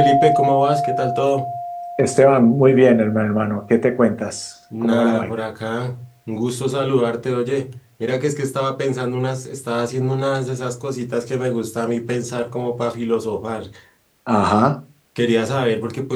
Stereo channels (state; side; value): identical; both; correlation 1.00